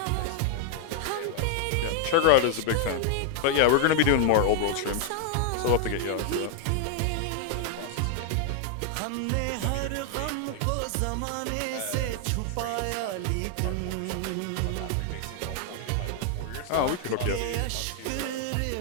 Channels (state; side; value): different; both; correlation 0.00